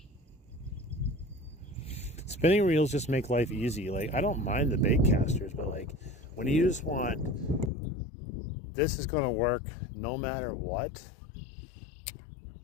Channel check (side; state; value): right; drops out; at 7.7 s